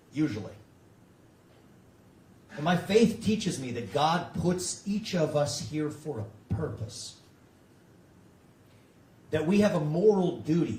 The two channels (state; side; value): identical; both; correlation 1.00